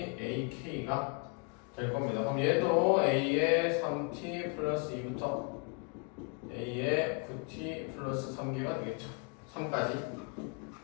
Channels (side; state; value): right; quieter; 35.1 dB